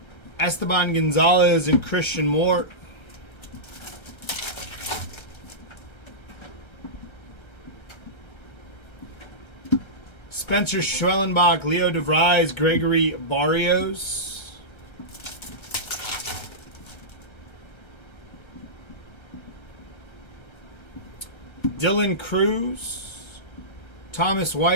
Esteban Gonzalez and Christian Moore. Spencer Schwellenbach, Leo DeVries, Gregory Barrios. Dylan Cruz, Thomas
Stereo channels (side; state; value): right; late; 1.3 ms